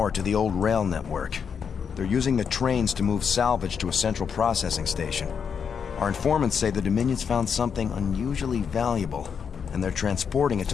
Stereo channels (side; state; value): right; quieter; 6.8 dB